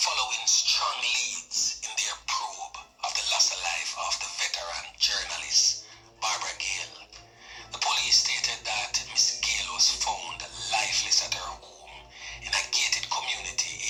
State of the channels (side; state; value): both; identical; correlation 1.00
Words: strong leads in their probe of the loss of life of the veteran journalist Barbara Gayle. The police stated that Miss Gayle was found lifeless at her home in a gated community